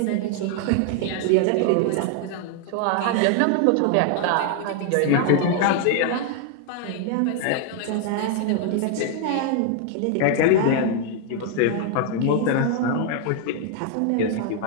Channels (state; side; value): different; both; correlation 0.00